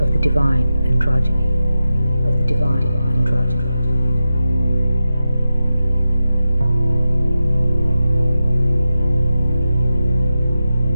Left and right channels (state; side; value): inverted; both; correlation -0.91